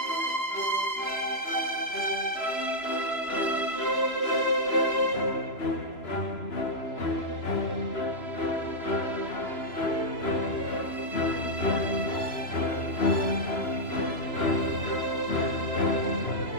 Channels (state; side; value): late; right; 3.0 ms